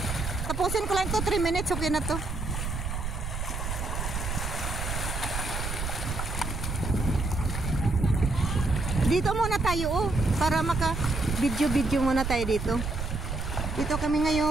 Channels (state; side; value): noise; right; rumble, 4 dB below the sound